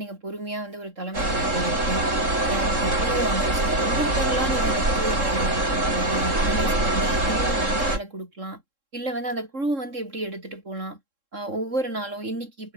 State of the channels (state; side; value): late; left; 3.7 ms